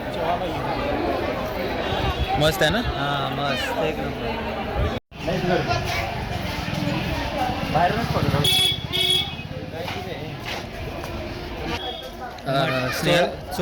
मस्त आहे ना? हां मस्त एक नंबर बाहेरूनच पडतो स्नेहल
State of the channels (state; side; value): identical; both; correlation 1.00